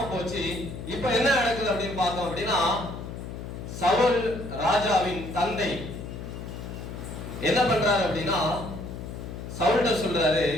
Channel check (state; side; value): noise; left; hum, 9 dB below the sound